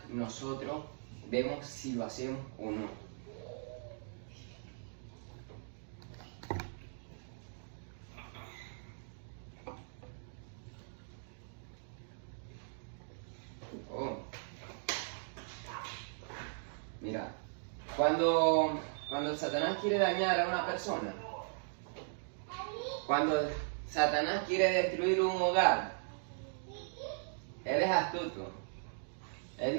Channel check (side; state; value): left; silent; digital silence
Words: nosotros vemos si lo hacemos o no. Mira, cuando Satanás quiere dañar a una persona, cuando Satanás quiere destruir un hogar, él es astuto. Él